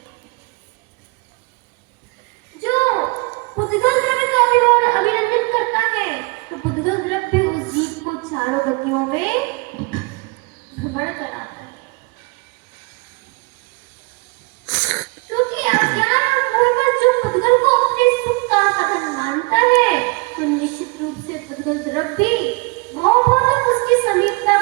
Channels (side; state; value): left; quieter; 28.0 dB